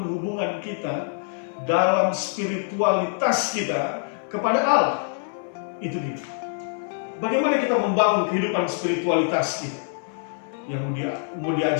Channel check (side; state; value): right; silent; 61 dB below the other